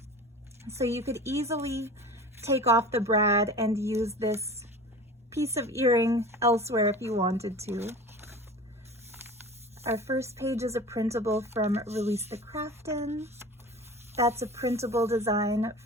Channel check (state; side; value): normal; both; correlation 0.37